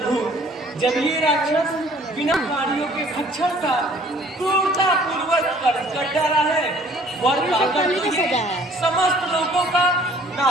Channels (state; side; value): normal; both; correlation 0.56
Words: जब ये राक्षस बिना प्राणियों के भक्षण का क्रूरता पूर्वक कर डाला है, वर पाकर तो ये समस्त लोगों का